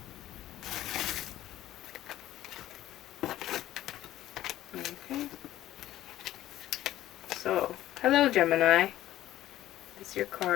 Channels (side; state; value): right; quieter; 14.0 dB